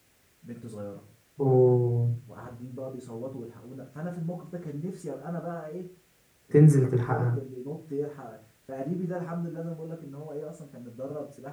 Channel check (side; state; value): both; identical; correlation 1.00